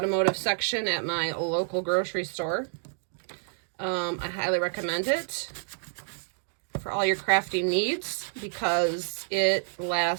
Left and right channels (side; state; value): left; silent; digital silence